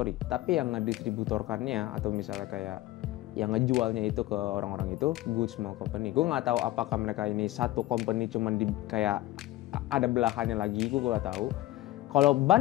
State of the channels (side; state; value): right; quieter; 16.6 dB